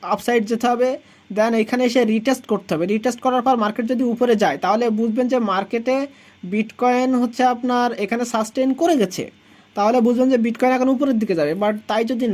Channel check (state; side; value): identical; both; correlation 1.00